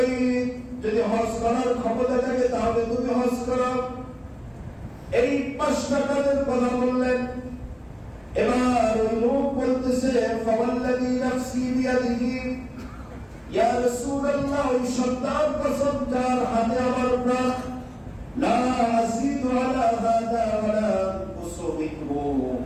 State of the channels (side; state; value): both; identical; correlation 1.00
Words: যদি হজ করার ক্ষমতা থাকে তাহলে তুমি হজ করো। এই 5টা কাজের কথা বললেন। এবার ওই লোক বলতেছে, ফাওয়াল্লাযী নাফসি বিয়াদিহি, ইয়া রাসূলুল্লাহ, ওই সন্তান কসম যার হাতে আমার প্রাণ, লা আযীদু আলা হাযা ওয়ালা আনকুসু মিনহু,